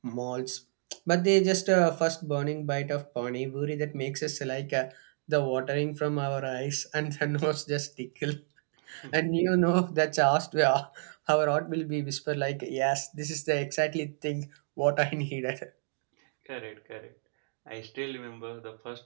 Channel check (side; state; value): left; silent; digital silence